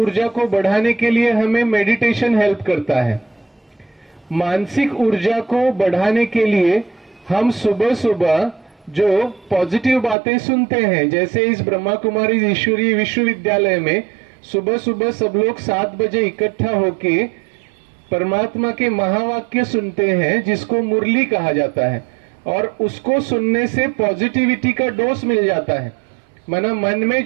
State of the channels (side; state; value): left; drops out; at 10.2 s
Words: को बढ़ाने के लिए हमें मेडिटेशन हेल्प करता है। मानसिक ऊर्जा को बढ़ाने के लिए हम सुबह सुबह जो पॉजिटिव बातें सुनते हैं, जैसे इस ब्रह्मा कुमारी ईश्वरीय विश्वविद्यालय में सुबह सुबह सब लोग 7 बजे इकट्ठा होके परमात्मा के महावाक्य सुनते हैं, जिसको मुरली कहा जाता है। और उसको सुनने से पॉजिटिविटी का डोज मिल जाता है। माना मन में